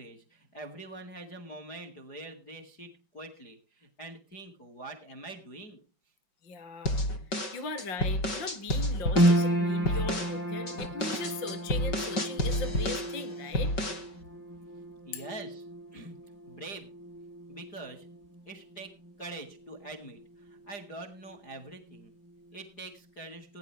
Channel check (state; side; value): late; right; 5.3 ms